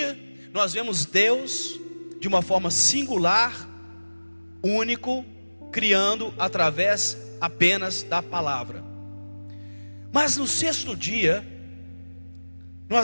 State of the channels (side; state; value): both; inverted; correlation -1.00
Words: nós vemos Deus de uma forma singular, único, criando através apenas da palavra. Mas no 6º dia,